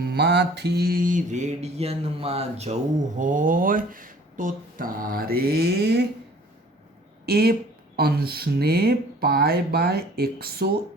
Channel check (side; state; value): both; normal; correlation 0.51